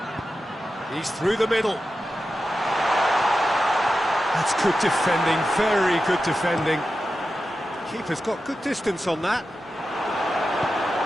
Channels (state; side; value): normal; both; correlation 0.91